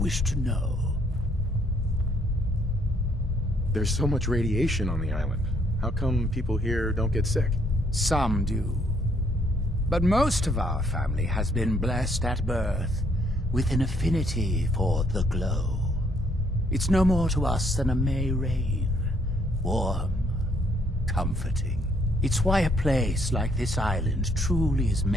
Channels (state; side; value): normal; both; correlation 0.68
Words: to know? There's so much radiation on the island. How come people here don't get sick? Some do. But most of our family has been blessed at birth with an affinity for the glow. It's no more to us than a May rain. Warm, comforting. It's why a place like this island truly is